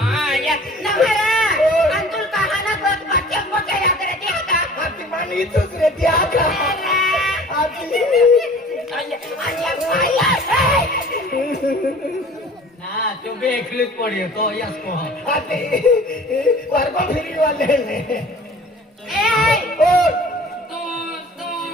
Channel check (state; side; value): normal; both; correlation 0.47